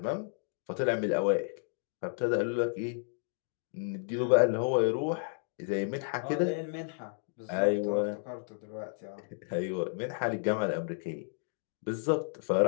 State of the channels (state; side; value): silent; right; digital silence